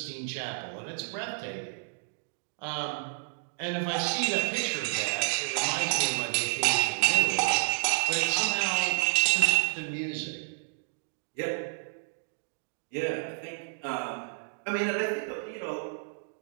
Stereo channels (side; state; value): left; silent; digital silence